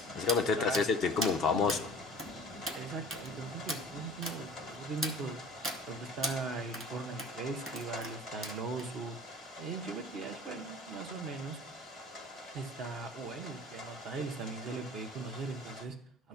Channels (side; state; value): both; normal; correlation 0.45